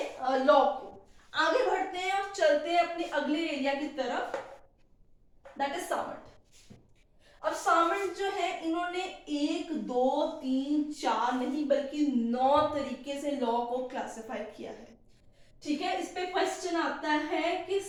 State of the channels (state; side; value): identical; both; correlation 1.00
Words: लॉ को। आगे बढ़ते हैं और चलते हैं अपने अगले एरिया की तरफ, दैट इज सामंट। अब सामंट जो है इन्होंने 1 2 3 4 नहीं बल्कि 9 तरीके से लॉ को क्लासिफाई किया है। ठीक है, इस पे क्वेश्चन आता है कि